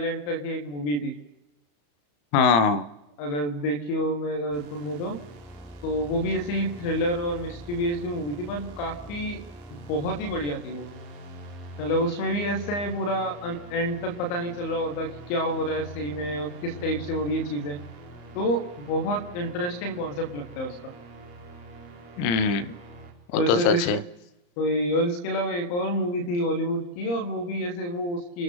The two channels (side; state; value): right; late; 35 ms